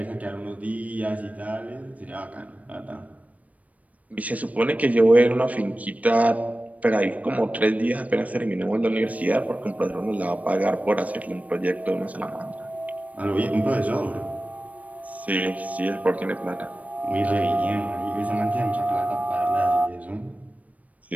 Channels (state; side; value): late; left; 0.069 ms